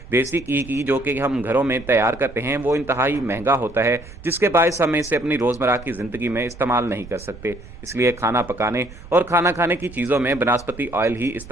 देसी घी की जो कि हम घरों में तैयार करते हैं, वो इंतहाई महंगा होता है, जिसके बायस हम इसे अपनी रोज़मर्रा की ज़िंदगी में इस्तेमाल नहीं कर सकते। इसलिए खाना पकाने और खाना खाने की चीज़ों में बनास्पति ऑयल ही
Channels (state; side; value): noise; right; rumble, 17 dB below the sound